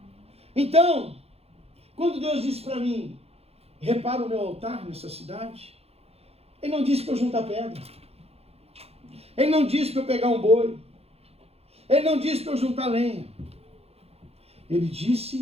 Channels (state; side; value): late; left; 0.29 ms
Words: Então, quando Deus disse para mim, repara o meu altar nessa cidade, Ele não disse para eu juntar pedra. Ele não disse para eu pegar um boi. Ele não disse para eu juntar lenha. Ele